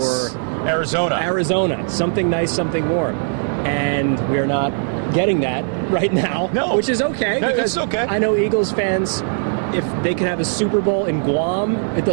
Arizona, something nice, something warm. And we're not getting that right now, which is okay. No, it's okay. I know Eagles fans, if they could have a Super Bowl in Guam, it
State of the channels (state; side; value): silent; left; digital silence